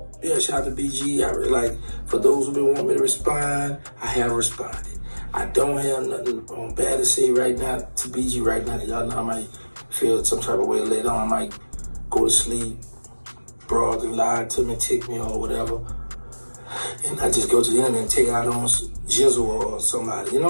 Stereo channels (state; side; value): inverted; both; correlation -1.00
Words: yeah, shout out to BG. I really like, for those who been wanting me to respond, I have responded. I don't have nothing bad to say right now to BG right now. Y'all know I might feel some type of way later on. I might go to sleep, broad and lie to me, tick me or whatever. And I just go to the internet and take out on Jizzle or somebody. You know